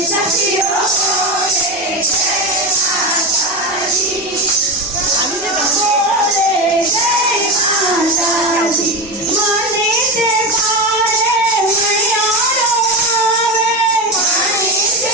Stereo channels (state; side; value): normal; both; correlation 0.19